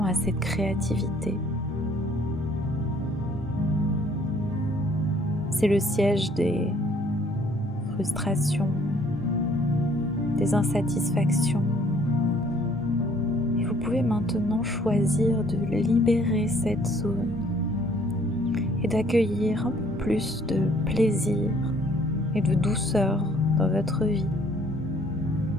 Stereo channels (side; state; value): both; normal; correlation 0.60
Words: à cette créativité. C'est le siège des frustrations, des insatisfactions. Vous pouvez maintenant choisir de libérer cette zone et d'accueillir un peu plus de plaisir et de douceur dans votre vie.